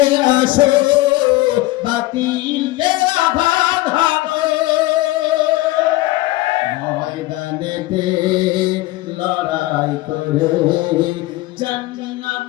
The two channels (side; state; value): right; quieter; 18.2 dB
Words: আসো, বাতিলকে আঘাত হানো। ময়দানেতে লড়াই করে জান্নাত